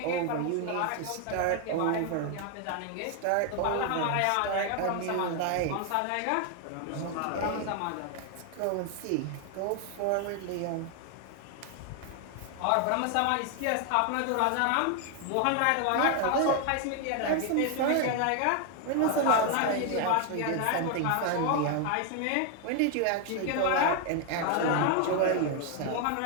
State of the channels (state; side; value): different; both; correlation 0.01